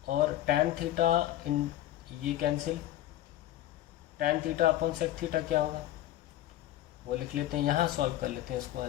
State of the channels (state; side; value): quieter; right; 13.6 dB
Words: और tan थीटा इन ये cancel, tan theta upon sec theta क्या होगा वो लिख लेते हैं, यहाँ सॉल्व कर लेते हैं इसको